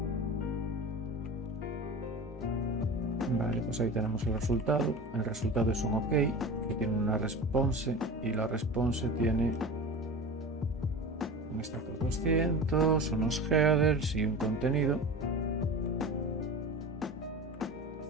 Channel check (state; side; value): normal; both; correlation 0.32